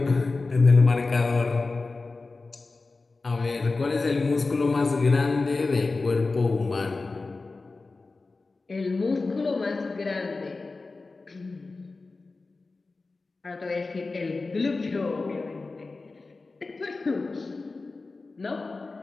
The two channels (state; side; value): quieter; right; 3.7 dB